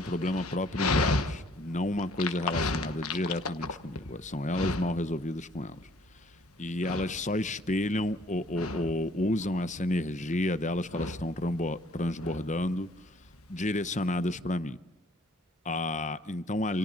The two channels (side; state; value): both; normal; correlation 0.60